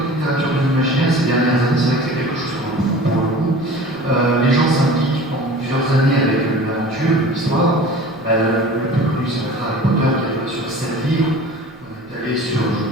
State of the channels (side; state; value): right; noise; rumble, 26 dB below the sound